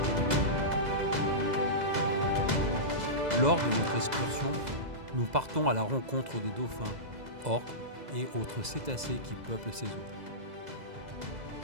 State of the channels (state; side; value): late; left; 2.0 ms